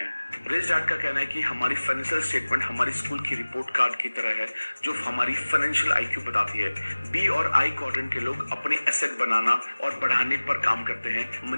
रिच डैड का कहना है कि हमारी फाइनेंशियल स्टेटमेंट हमारी स्कूल की रिपोर्ट कार्ड की तरह है जो हमारी फाइनेंशियल आईक्यू बताती है। बी और आई क्वाड्रेंट के लोग अपने एसेट बनाना और बढ़ाने पर काम करते हैं,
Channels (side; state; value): both; inverted; correlation -1.00